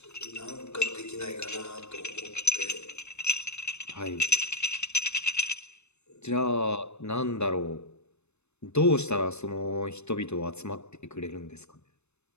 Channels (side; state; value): right; late; 0.81 ms